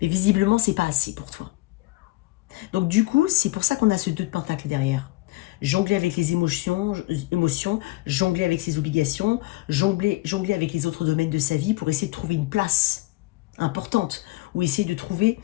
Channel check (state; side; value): quieter; right; 20.8 dB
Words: Mais visiblement, c'est pas assez pour toi. Donc du coup, c'est pour ça qu'on a ce 2 de pentacle derrière. Jongler avec les émotions, jongler avec ses obligations, jongler avec les autres domaines de sa vie pour essayer de trouver une place importante ou essayer de trouver